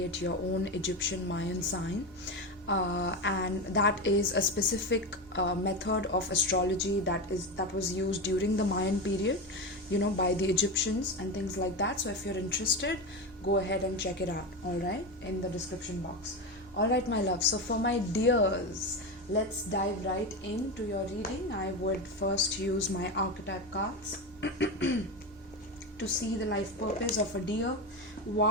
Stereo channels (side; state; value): both; normal; correlation 0.18